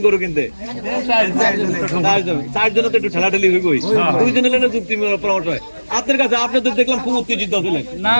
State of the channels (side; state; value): both; inverted; correlation -1.00